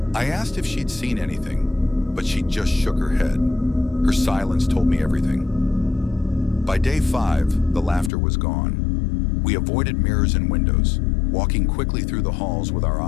I asked if she'd seen anything, but she just shook her head. Her silence told me everything. By day 5, the laughter was gone. We avoided mirrors and windows, walking quickly through the halls with our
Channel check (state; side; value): drops out; right; at 8.1 s